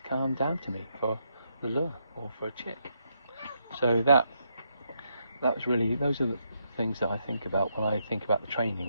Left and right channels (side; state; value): both; inverted; correlation -0.78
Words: come down to me for the lure or for a chick. So that was really, those are the things that I think about when I think about the